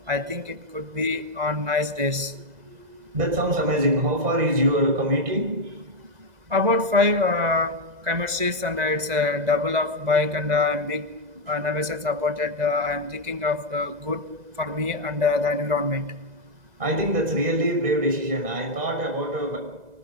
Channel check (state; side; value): late; left; 2.0 ms